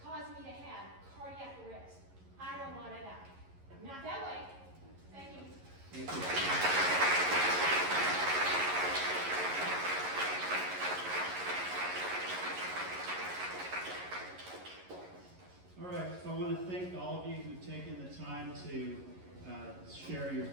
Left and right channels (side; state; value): left; late; 11 ms